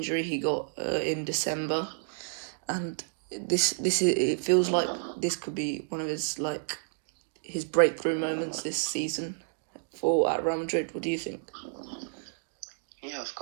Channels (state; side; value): silent; left; digital silence